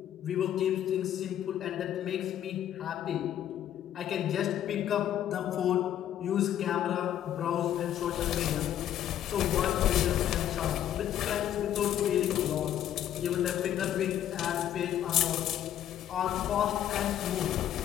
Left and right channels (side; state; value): right; quieter; 11.1 dB